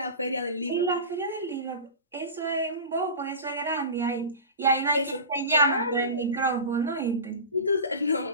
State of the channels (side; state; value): both; inverted; correlation -0.30